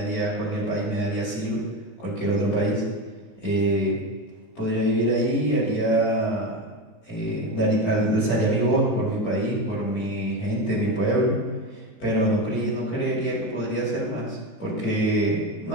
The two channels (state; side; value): late; right; 19 ms